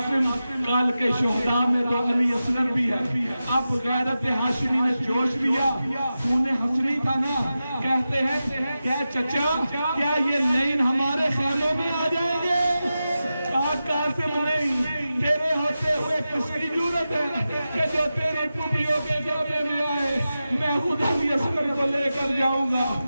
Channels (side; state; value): both; inverted; correlation -0.92